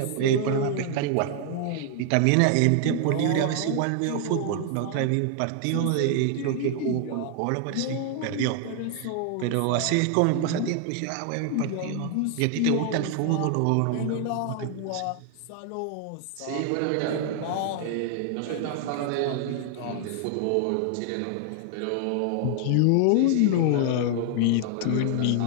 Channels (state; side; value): different; both; correlation 0.00